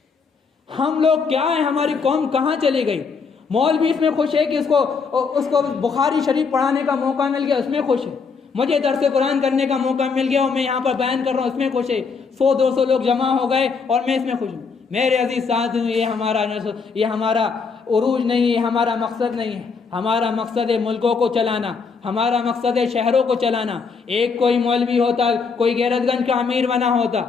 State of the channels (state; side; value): quieter; right; 5.2 dB